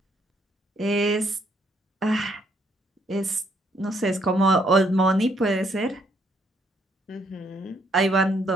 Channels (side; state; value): both; normal; correlation 0.70